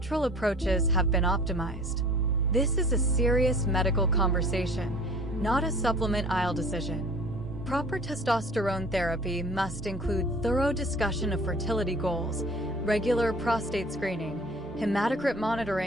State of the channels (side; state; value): both; normal; correlation 0.47